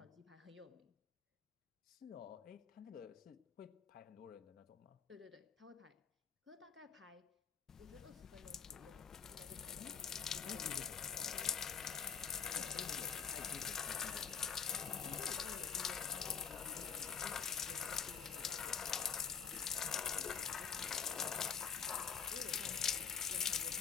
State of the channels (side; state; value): right; quieter; 6.8 dB